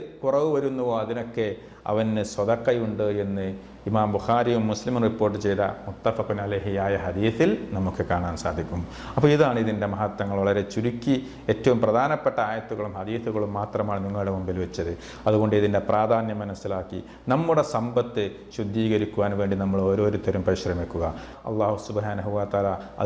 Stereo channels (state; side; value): identical; both; correlation 1.00